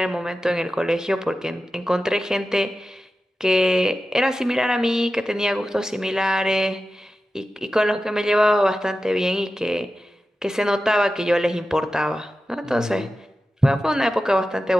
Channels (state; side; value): normal; both; correlation 0.93